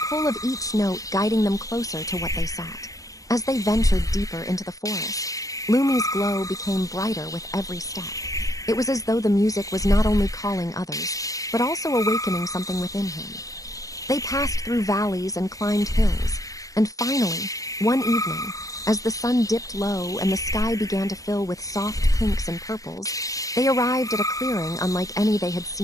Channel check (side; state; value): right; late; 0.16 ms